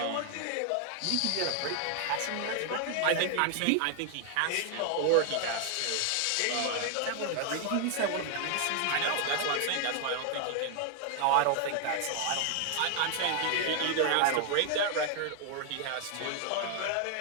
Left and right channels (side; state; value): both; different; correlation 0.00